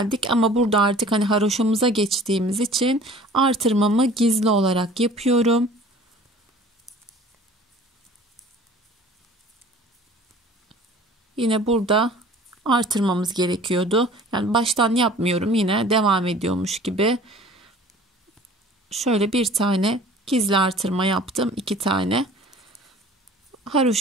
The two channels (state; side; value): normal; both; correlation 0.47